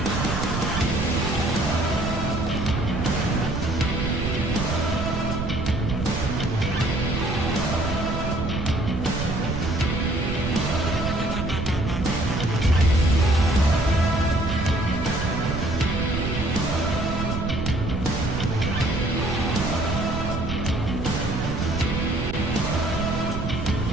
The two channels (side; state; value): right; noise; rumble, 3 dB below the sound